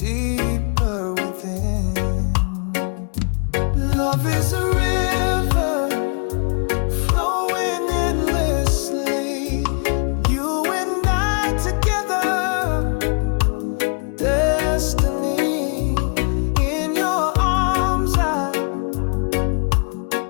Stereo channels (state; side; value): quieter; right; 39.3 dB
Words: within. Love is a river flowing endlessly. You and I together, destiny. In your arms I